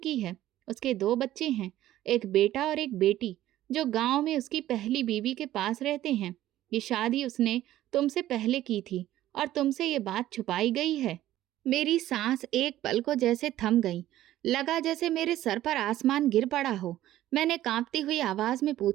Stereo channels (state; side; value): quieter; left; 13.9 dB